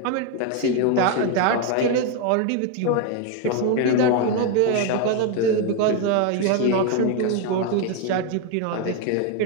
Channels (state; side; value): different; both; correlation 0.01